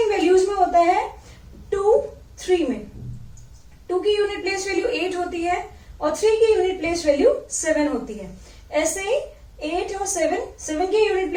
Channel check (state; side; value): identical; both; correlation 1.00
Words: वैल्यूज में होता है 2, 3 में. 2 की यूनिट प्लेस वैल्यू 8 होती है और 3 की यूनिट प्लेस वैल्यू 7 होती है. ऐसे ही 8 और 7 की यूनिट